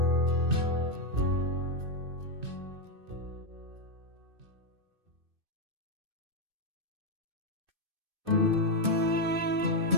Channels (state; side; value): late; left; 2.6 ms